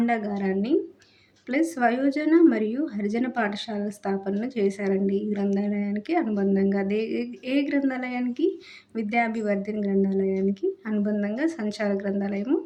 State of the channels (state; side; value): identical; both; correlation 1.00